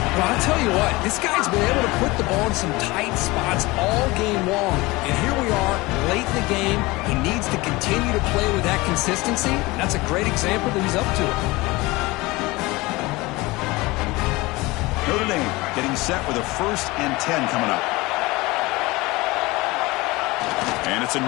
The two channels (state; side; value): quieter; right; 22.0 dB